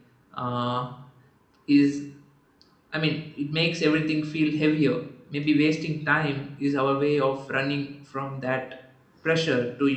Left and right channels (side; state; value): both; identical; correlation 1.00